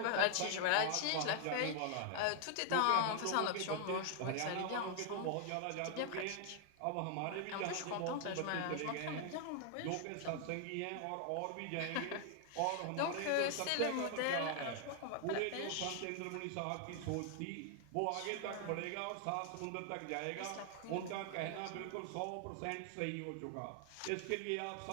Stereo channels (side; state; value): both; different; correlation 0.00